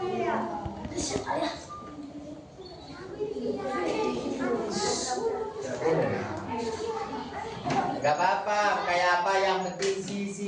Gak apa-apa, kayak apa, yang penting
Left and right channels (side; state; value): both; identical; correlation 1.00